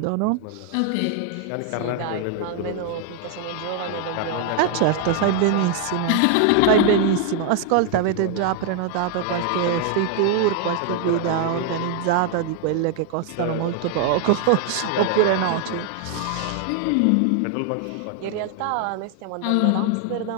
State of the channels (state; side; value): different; both; correlation 0.00